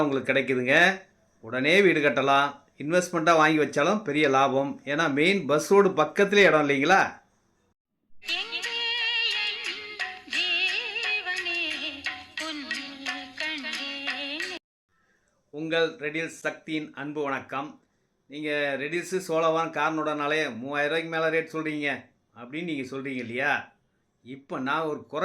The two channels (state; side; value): identical; both; correlation 1.00